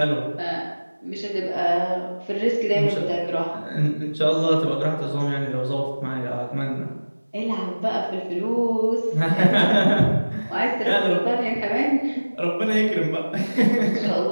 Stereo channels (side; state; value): both; inverted; correlation -1.00